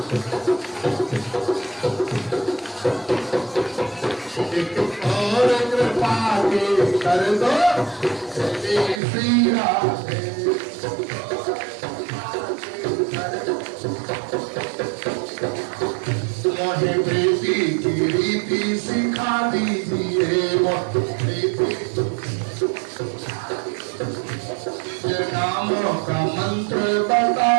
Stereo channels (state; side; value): drops out; left; at 9.0 s